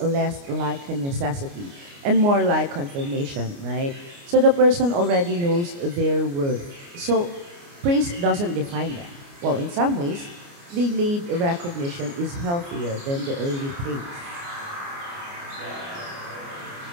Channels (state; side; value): late; left; 29 ms